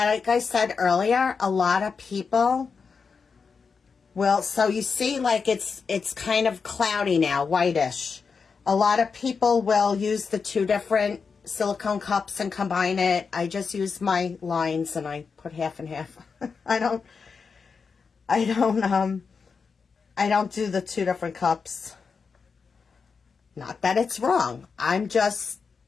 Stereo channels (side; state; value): right; quieter; 5.4 dB